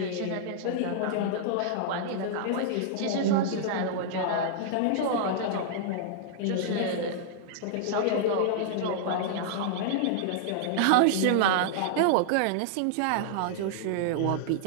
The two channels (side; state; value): both; different; correlation -0.01